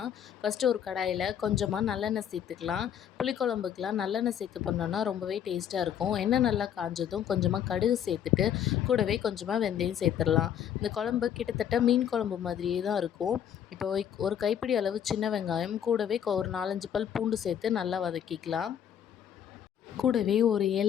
ஃபஸ்ட்டு ஒரு கடாயில் கொஞ்சமாக நல்லெண்ணெய் சேர்த்துக்கலாம். புளிக்குழம்புக்கெலாம் நல்லெண்ணெய் சேர்த்து பண்ணோன்னா ரொம்பவே டேஸ்ட்டாக இருக்கும். எண்ணெய் நல்லா காஞ்சதும் கொஞ்சமாக கடுகு சேர்த்துட்டு கூடவே கொஞ்சமாக வெந்தயம் சேர்த்துடலாம். இந்த குழம்பு கிட்டத்தட்ட மீன் குழம்பு மாதிரியே தான் இருக்கும். இப்போ ஒரு கைப்பிடி அளவு சின்ன வெங்காயம் கூடவே ஒரு 4-5 பல் பூண்டு சேர்த்து நல்லா வதக்கிக்கலாம். கூடவே ஒரு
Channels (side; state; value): right; quieter; 9.3 dB